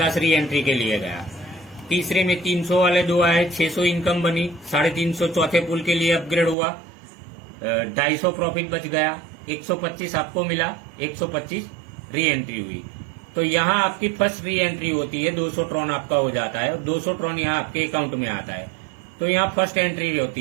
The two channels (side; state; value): left; drops out; at 6.6 s